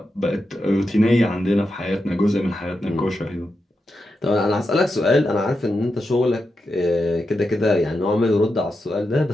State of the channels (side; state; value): both; normal; correlation 0.87